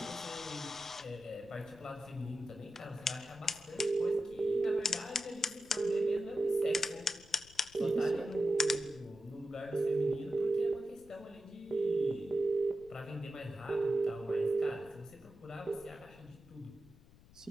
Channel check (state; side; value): noise; left; rumble, 24 dB below the sound